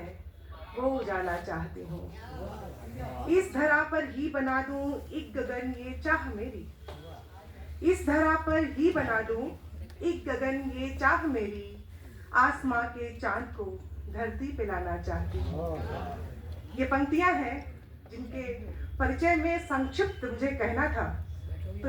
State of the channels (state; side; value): identical; both; correlation 1.00